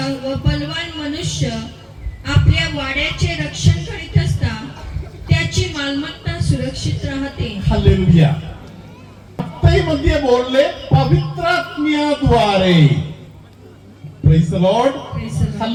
व बलवान मनुष्य आपल्या वाड्याचे रक्षण करीत असता त्याची मालमत्ता सुरक्षित राहते. हालेलुया. मध्ये बोलले पवित्र आत्म्याद्वारे. Praise the Lord. Praise the Lord.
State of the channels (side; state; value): both; identical; correlation 1.00